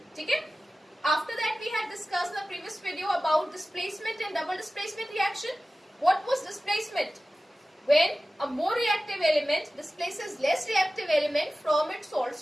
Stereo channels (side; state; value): both; normal; correlation 0.96